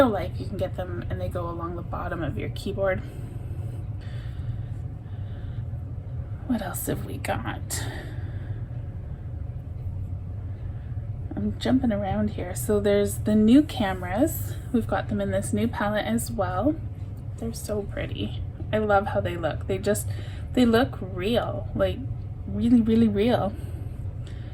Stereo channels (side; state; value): both; identical; correlation 1.00